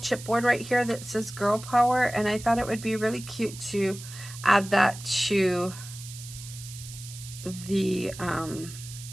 right here that says Girl Power, and I thought it would be really cute to add that to the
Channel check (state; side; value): noise; right; hiss, 14 dB below the sound